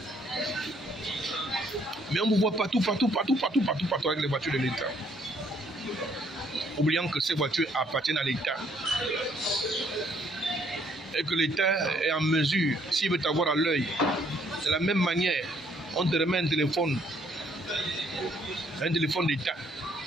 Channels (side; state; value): both; normal; correlation 0.66